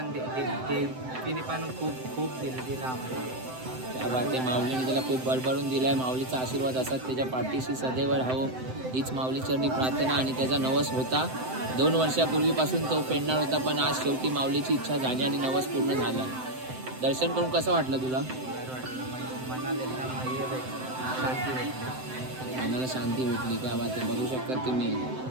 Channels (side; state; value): left; late; 7.8 ms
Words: तिने पण खूप दिलं आम्हाला. त्या माऊलीने त्याला खूप बळबळून दिलाय. माऊलीचा आशीर्वाद असतात त्याच्या पाठीशी सदैव राहो हीच माऊलीचरणी प्रार्थना. आणि त्याचा नवस होता 2 वर्षापूर्वीपासून तो फेडणार होता, पण आज शेवटी माऊलीची इच्छा झाली आणि नवस पूर्ण झाला. दर्शन करून कसं वाटलं तुला? मनाला एकदम हे भेटलं, शांती भेटली. मनाला शांती भेटली. काय बात आहे, बघू शकता तुम्ही.